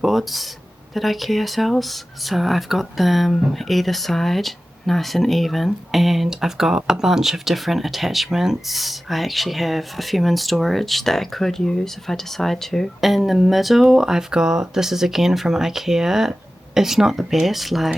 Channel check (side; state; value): both; normal; correlation 0.95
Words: that IKEA sells. So I've got them either side, nice and even, and I've got a bunch of different attachments. I actually have a few in storage that I could use if I decide to. In the middle I've got, this is again from IKEA. It's not the best,